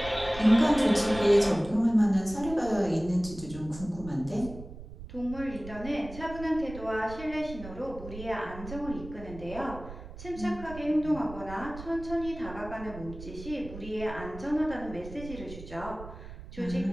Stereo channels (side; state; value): right; noise; rumble, 13 dB below the sound